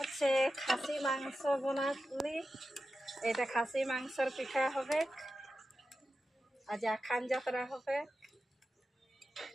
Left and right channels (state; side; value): normal; both; correlation 0.92